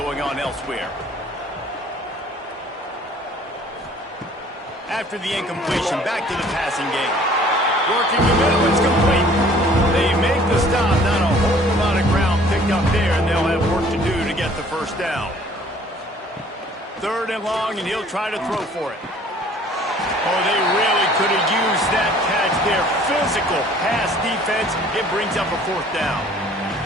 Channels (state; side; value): normal; both; correlation 0.54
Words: on elsewhere. After the incompletion, back to the passing game. Working the middle, it's complete. They make the stop, not a whole lot of ground picked up there, and they'll have work to do to get the first down. 3rd and long, and he'll try to throw for it. Oh, they really could have used that catch there. Physical pass defense. It brings up a 4th down.